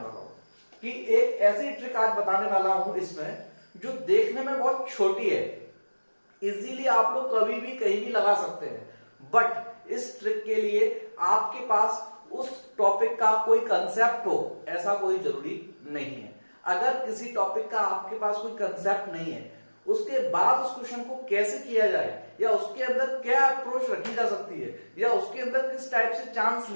वाला हूं कि एक ऐसी ट्रिक आज बताने वाला हूं इसमें जो देखने में बहुत छोटी है, इजीली आप लोग कभी भी कहीं भी लगा सकते हैं, बट इस ट्रिक के लिए आपके पास उस टॉपिक का कोई कंसेप्ट हो ऐसा कोई जरूरी नहीं है। अगर किसी टॉपिक का आपके पास कोई कंसेप्ट नहीं है, उसके बाद उस क्वेश्चन को कैसे किया जाए, या उसके अंदर क्या अप्रोच रखी जा सकती है, या उसके अंदर किस टाइप से चांस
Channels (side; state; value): both; inverted; correlation -1.00